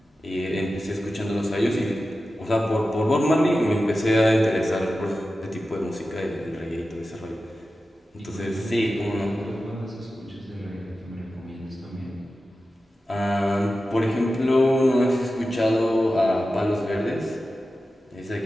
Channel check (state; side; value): normal; both; correlation 0.93